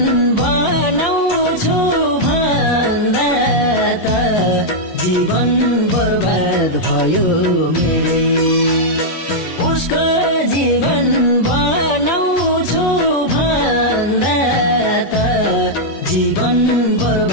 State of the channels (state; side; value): late; right; 11 ms